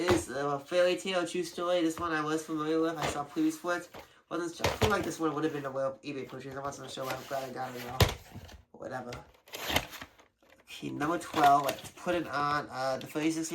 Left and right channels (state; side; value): identical; both; correlation 1.00